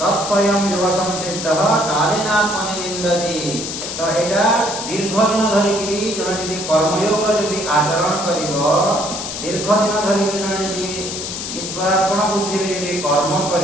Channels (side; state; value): left; noise; hiss, 6 dB below the sound